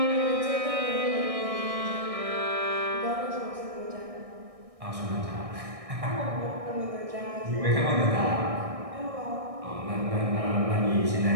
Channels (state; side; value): late; left; 1.6 ms